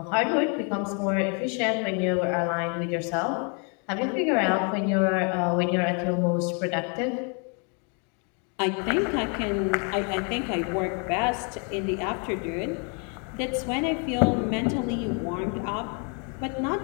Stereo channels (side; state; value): right; quieter; 37.7 dB